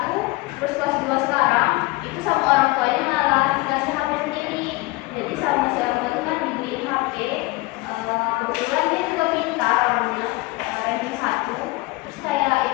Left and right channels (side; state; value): right; quieter; 22.5 dB